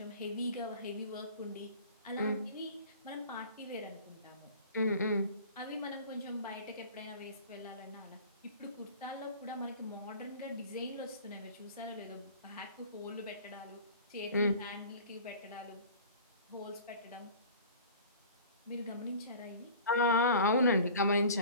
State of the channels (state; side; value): inverted; both; correlation -0.43